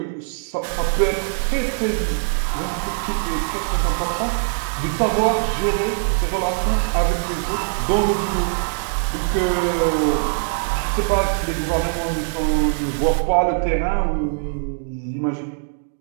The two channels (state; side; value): silent; left; digital silence